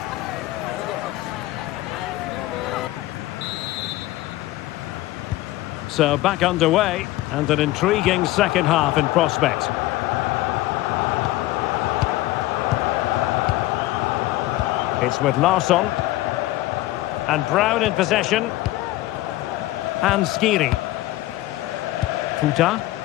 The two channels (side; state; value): right; quieter; 17.1 dB